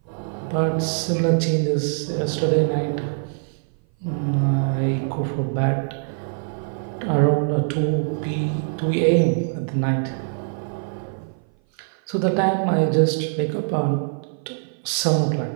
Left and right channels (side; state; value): left; silent; 58 dB below the other